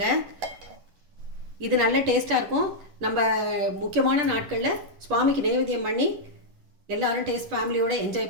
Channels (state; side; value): late; left; 10 ms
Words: இது நல்ல டேஸ்ட்டாக இருக்கும். நம்ம முக்கியமான நாட்களில் சுவாமிக்கு நைவேத்தியம் பண்ணி எல்லோரும் டேஸ்ட் ஃபேமிலியோடு